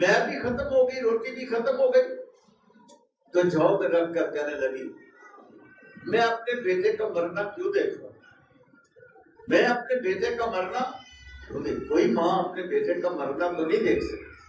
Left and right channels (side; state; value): both; identical; correlation 1.00